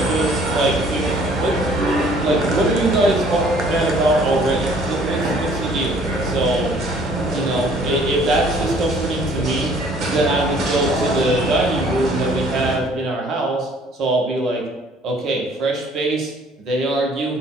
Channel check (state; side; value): normal; both; correlation 0.57